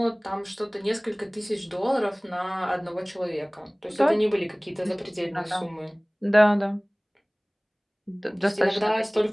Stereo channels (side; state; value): both; identical; correlation 1.00